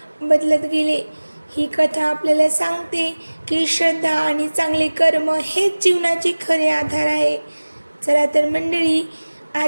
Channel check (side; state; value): both; inverted; correlation -1.00